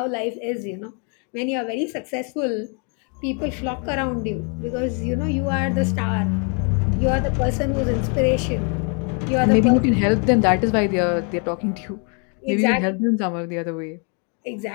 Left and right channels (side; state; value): right; quieter; 37.8 dB